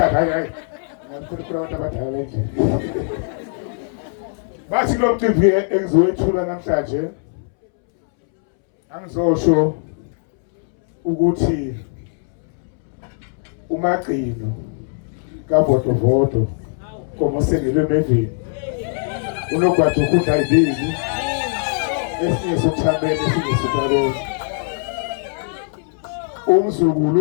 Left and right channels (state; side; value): silent; right; 65 dB below the other